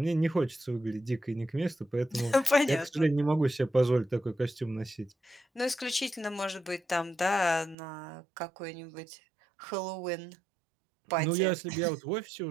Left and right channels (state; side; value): drops out; left; at 7.8 s